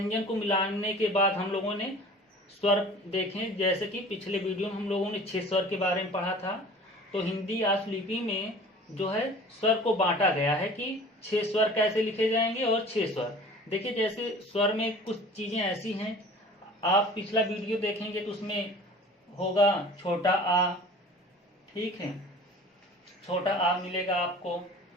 को मिलाने के बाद हम लोगों ने स्वर देखें। जैसे कि पिछले वीडियो में हम लोगों ने 6 स्वर के बारे में पढ़ा था। तो हिंदी आशुलिपि में जो है स्वर को बांटा गया है कि 6 स्वर कैसे लिखे जाएंगे और 6 स्वर। देखिए, जैसे स्वर में कुछ चीजें ऐसी हैं, आप पिछला वीडियो देखेंगे तो उसमें होगा छोटा आ, ठीक है, छोटा आ मिलेगा आपको,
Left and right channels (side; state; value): both; normal; correlation 0.44